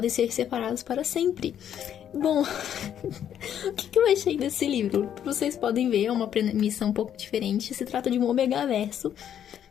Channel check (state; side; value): quieter; right; 9.7 dB